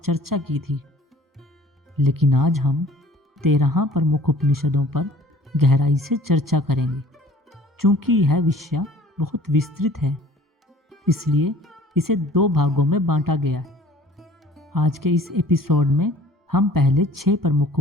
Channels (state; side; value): normal; both; correlation 0.51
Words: की थी, लेकिन आज हम 13 प्रमुख उपनिषदों पर गहराई से चर्चा करेंगे। चूंकि यह विषय बहुत विस्तृत है, इसलिए इसे 2 भागों में बांटा गया है। आज के इस एपिसोड में हम पहले 6 प्रमुख